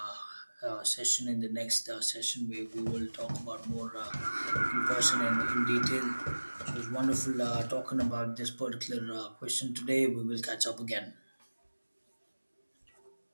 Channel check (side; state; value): both; inverted; correlation -1.00